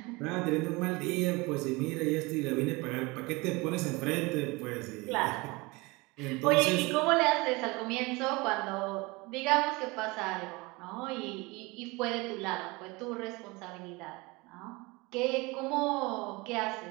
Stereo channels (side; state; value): left; quieter; 24.4 dB